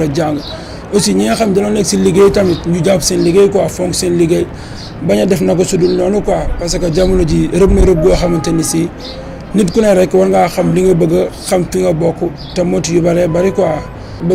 a jàng aussi ñi nga xam dañoo nekk si liggéey tamit ñu jàpp seen liggéey quoi fonk seen liggéey bañ a def na ko sudul noonu quoi parce que jamono ji rëb na rëb goo xamante ni si nit ku ne rek war ngaa xam li nga bëgg a xam fi nga bokk te motu yu bëree bëri quoi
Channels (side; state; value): both; identical; correlation 1.00